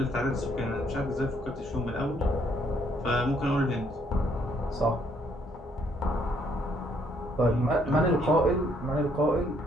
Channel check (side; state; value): both; normal; correlation 0.68